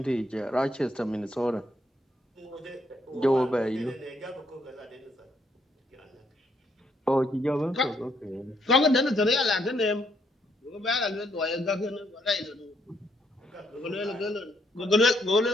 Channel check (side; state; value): both; normal; correlation 0.73